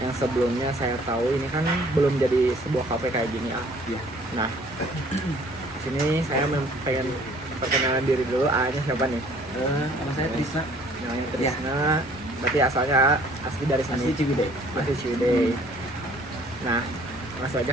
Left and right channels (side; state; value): both; normal; correlation 0.56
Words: Yang sebelumnya saya tahu ini kan belum jadi sebuah HP kayak gini ya. Nah, di sini saya pengen perkenalan diri dulu. A-nya siapa nih? Nama saya Trisna. Namanya Trisna. Berarti asalnya asli dari sini. Asli Ciwidey. Asli Ciwidey. Nah, langsung